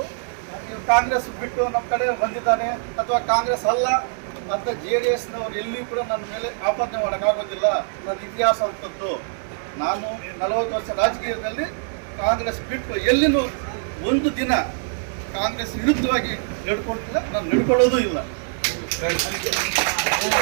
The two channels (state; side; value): silent; left; digital silence